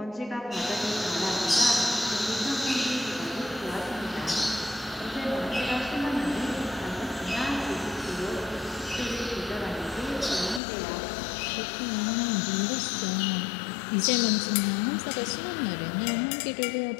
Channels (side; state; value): right; drops out; at 10.6 s